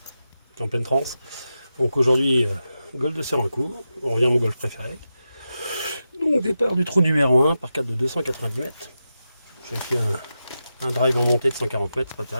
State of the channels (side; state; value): both; inverted; correlation -0.90